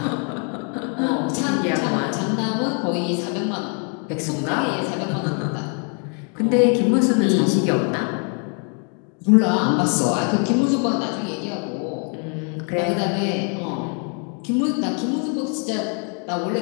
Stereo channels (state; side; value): quieter; right; 39.7 dB